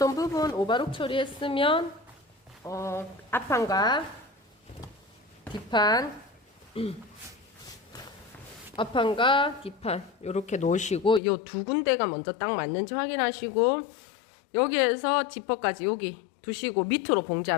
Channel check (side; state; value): right; drops out; at 11.2 s